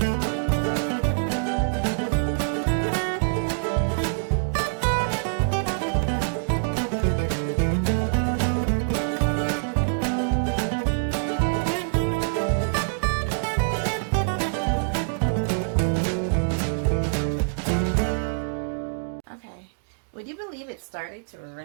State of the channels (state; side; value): silent; left; digital silence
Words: Would you believe it started to